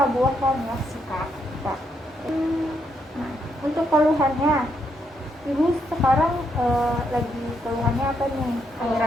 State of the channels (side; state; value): both; normal; correlation 0.77